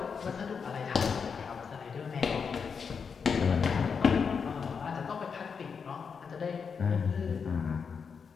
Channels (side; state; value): right; quieter; 6.0 dB